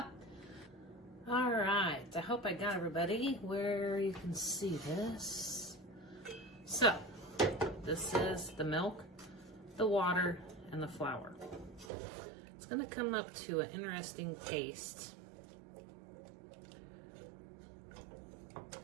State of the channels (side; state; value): left; drops out; at 11.9 s